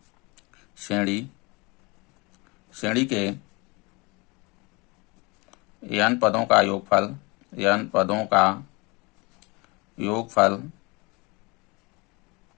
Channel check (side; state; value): right; quieter; 26.7 dB